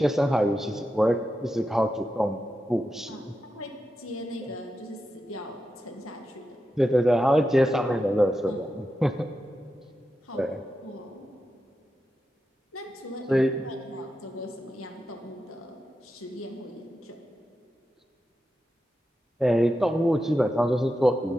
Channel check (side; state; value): both; normal; correlation 0.89